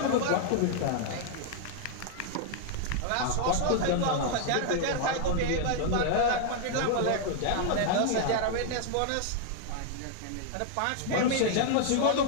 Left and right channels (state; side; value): different; both; correlation -0.01